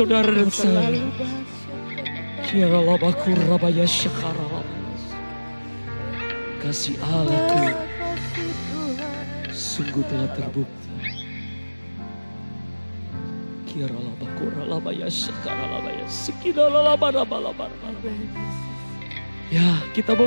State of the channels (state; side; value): inverted; both; correlation -1.00